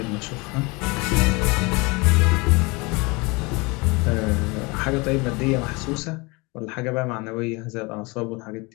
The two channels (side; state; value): right; quieter; 26.5 dB